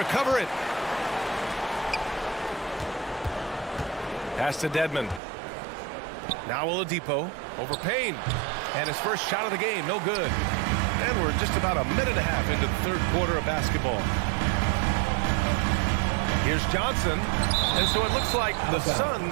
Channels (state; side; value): drops out; left; at 5.2 s